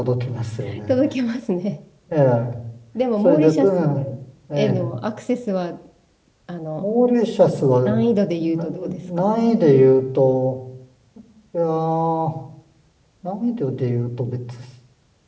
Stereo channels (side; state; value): both; identical; correlation 1.00